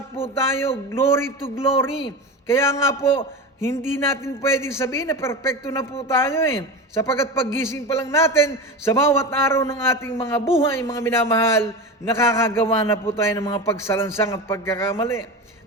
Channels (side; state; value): both; normal; correlation 0.25